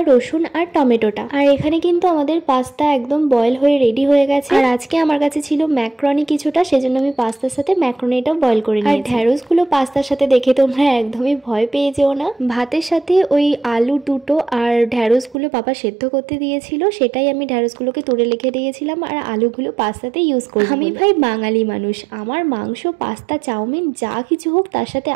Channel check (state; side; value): drops out; left; at 15.4 s